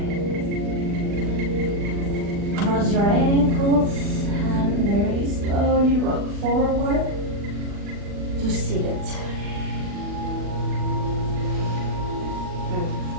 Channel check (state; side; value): late; left; 40 ms